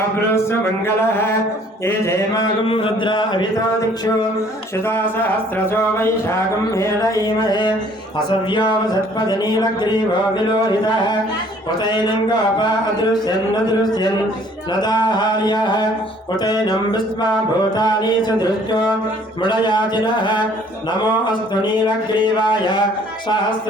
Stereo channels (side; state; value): both; normal; correlation 0.57